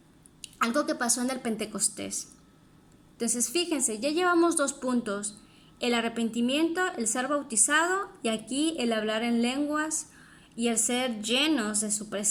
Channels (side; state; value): both; identical; correlation 1.00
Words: Algo que pasó en el Pentecostés. Entonces, fíjense, ya llevamos 2 puntos. El arrepentimiento, el ser bautizado, y aquí el hablar en lenguas y el ser llenos de su